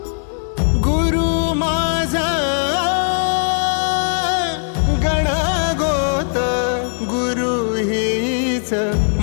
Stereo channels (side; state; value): right; silent; 67 dB below the other